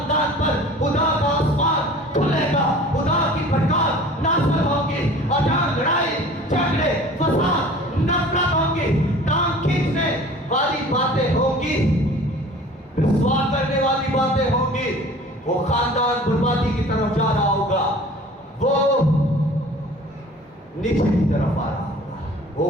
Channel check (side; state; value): both; normal; correlation 0.45